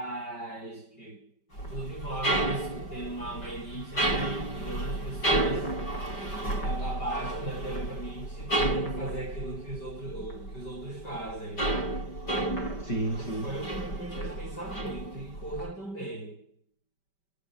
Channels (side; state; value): right; late; 5.1 ms